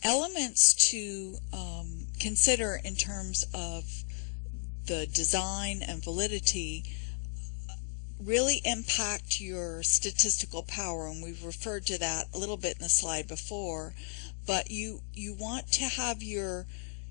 Elements to consider in terms of the design and validity really impact your statistical power, and we've referred to that a little bit in the slide before, but you want to have your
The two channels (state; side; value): silent; right; digital silence